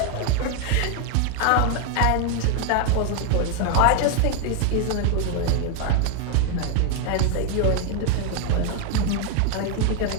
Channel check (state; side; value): different; both; correlation 0.00